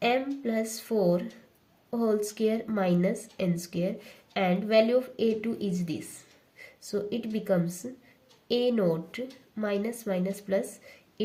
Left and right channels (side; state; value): both; identical; correlation 1.00